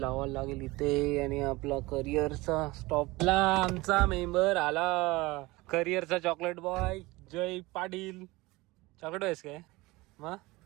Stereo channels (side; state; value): left; quieter; 21.5 dB